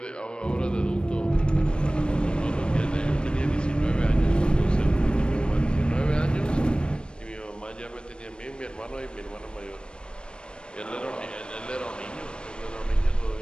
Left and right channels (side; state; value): right; late; 0.054 ms